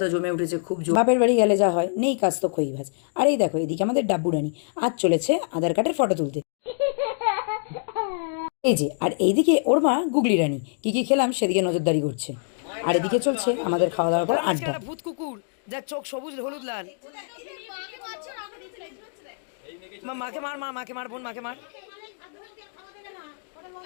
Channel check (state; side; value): silent; right; digital silence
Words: তো জমে উঠেছে খুব জোর। বাপের বাড়ি গেলে যা হয়, নেই কাজ তো খই ভাজ। আর এই দেখো এদিকে আমাদের ডাব্বু রানী আজ চলেছে আধার কার্ডের ফটো তুলতে। এই যে, আর এইদিকে ওর মা গুগলি রানী কি কি খেলাম সেদিকে নজরদারি করছে। আর এদিকে চলছে আমাদের খাওয়া দাওয়ার পর আড্ডা। ভূত কুকুর যার চোখ সবুজ হলুদ লাল। মাকে মার, মাকে মার, বোন মাকে মার।